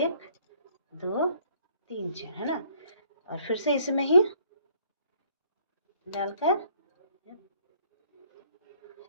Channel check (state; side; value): inverted; both; correlation -0.62